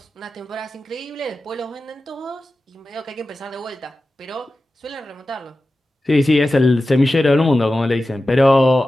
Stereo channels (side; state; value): both; normal; correlation 0.94